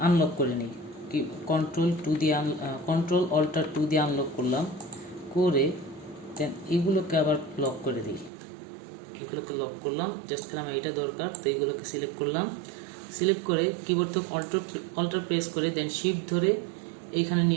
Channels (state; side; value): drops out; left; at 8.3 s